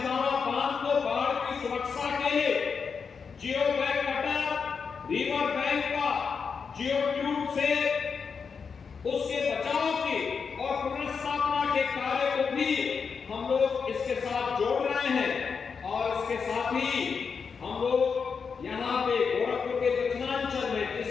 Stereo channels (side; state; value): right; quieter; 5.8 dB